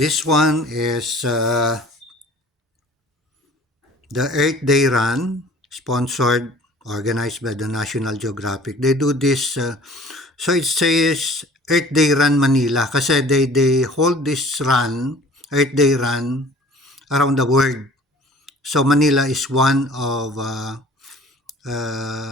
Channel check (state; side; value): normal; both; correlation 0.49